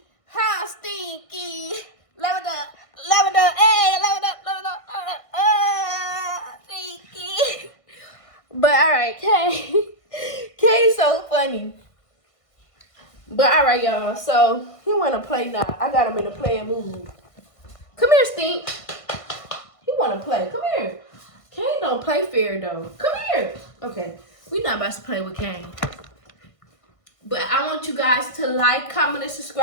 How stinky! Leveled up, hey! Leveled up, stinky! But alright, Kay's so funny. But alright, y'all. So he wanna play now. I got him in a playing mood. Come here, Stink. He wanna play. Come here. Kane don't play fair though. Come here. Okay, we not about to play with Kane. But I want you guys to like, comment, and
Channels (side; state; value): right; late; 1.5 ms